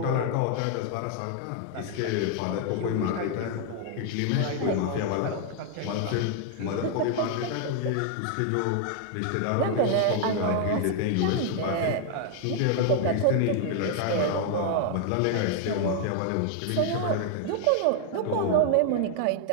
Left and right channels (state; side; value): different; both; correlation 0.00